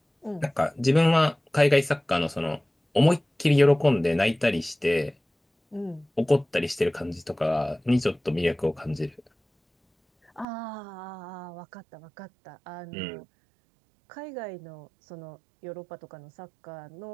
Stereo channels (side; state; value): left; drops out; at 10.5 s